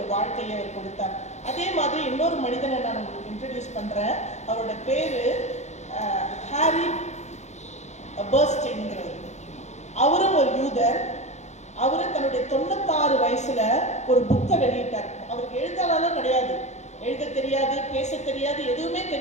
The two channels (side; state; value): right; late; 0.33 ms